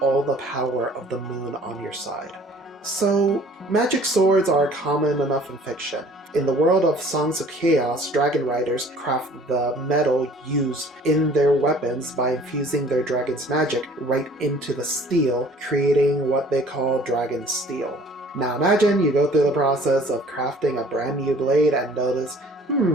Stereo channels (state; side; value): normal; both; correlation 0.52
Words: all the power of the moon on your side. So, magic swords are common enough in fiction. In the world of Songs of Chaos, dragon riders craft the metal used in their weapons by infusing their dragon's magic right into the steel, creating what they call dragon steel. Now imagine you go through the process of crafting a brand new blade and notice,